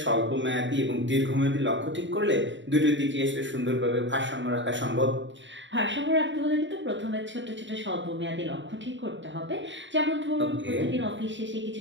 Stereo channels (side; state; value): left; late; 0.54 ms